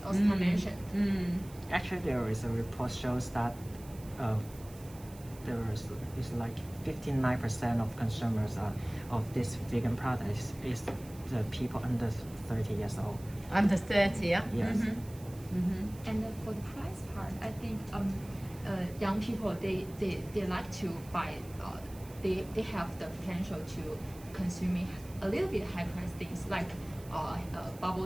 Oscar mentioned. Actually, there is a report shows that is like 59% of consumers of this vegan product is the people under 30 years old. Under 30, yeah? Yes. And for the price part, I think young people they like to buy. They have the potential to consuming a little bit high price things like bubble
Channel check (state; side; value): noise; right; hiss, 21 dB below the sound